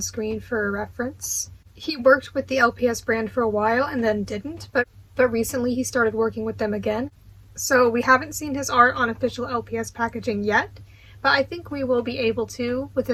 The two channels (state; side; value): identical; both; correlation 1.00